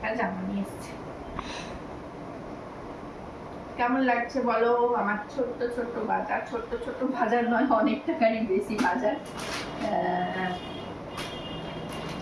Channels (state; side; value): identical; both; correlation 1.00